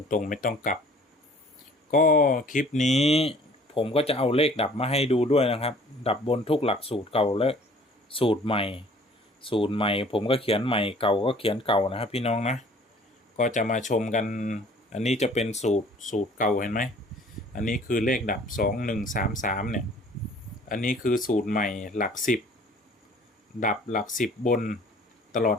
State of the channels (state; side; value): normal; both; correlation 0.53